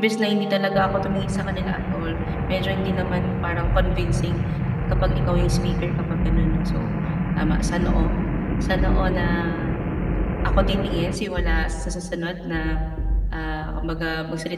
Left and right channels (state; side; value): identical; both; correlation 1.00